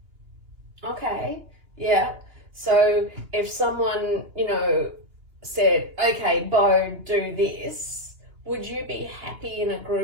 Okay, yeah. So if someone, said, okay, Beau, do this, would you be happy in a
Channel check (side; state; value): left; late; 2.9 ms